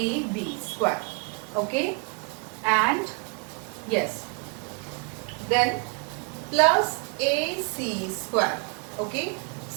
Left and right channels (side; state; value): left; quieter; 35.6 dB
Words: square. Okay, and yes, then plus ac square. Okay,